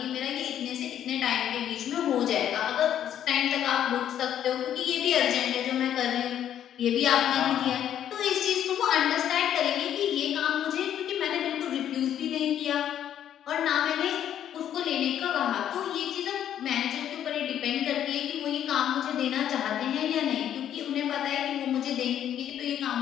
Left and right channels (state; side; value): quieter; right; 10.3 dB